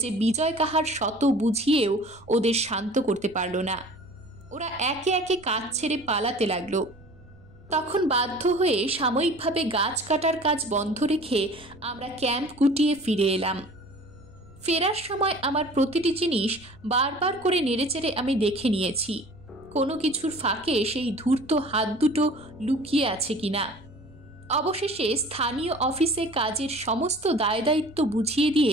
যে বিজয় কাহার শত বুঝিয়েও ওদের শান্ত করতে পারল না। ওরা একে একে কাজ ছেড়ে পালাতে লাগলো। তখন বাধ্য হয়ে সাময়িকভাবে গাছ কাটার কাজ বন্ধ রেখে আমরা ক্যাম্প গুটিয়ে ফিরে এলাম। ফেরার সময় আমার প্রতিটি জিনিস বারবার করে নেড়েচেড়ে আমি দেখে নিয়েছি, কোনো কিছুর ফাঁকে সেই ধূর্ত হাত দুটো লুকিয়ে আছে কিনা। অবশেষে স্থানীয় অফিসে কাজের সমস্ত দায়দায়িত্ব বুঝিয়ে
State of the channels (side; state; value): right; noise; rumble, 25 dB below the sound